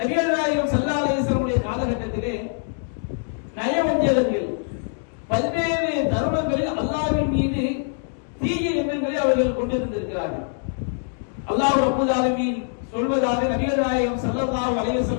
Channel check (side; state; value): right; silent; 63 dB below the other